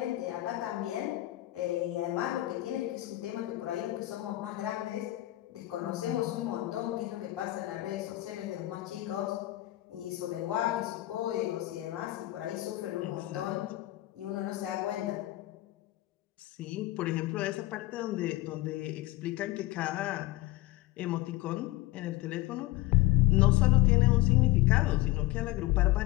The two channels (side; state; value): right; quieter; 17.6 dB